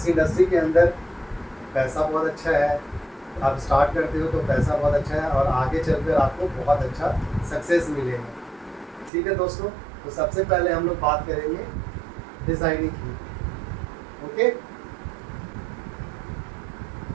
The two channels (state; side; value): drops out; left; at 9.1 s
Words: इंडस्ट्री के अंदर पैसा बहुत अच्छा है, आप स्टार्ट करते हो तो पैसा बहुत अच्छा है और आगे चलकर आपको बहुत अच्छा सक्सेस मिलेगा। ठीक है दोस्तों, तो सबसे पहले हम लोग बात करेंगे डिज़ाइनिंग की। ओके,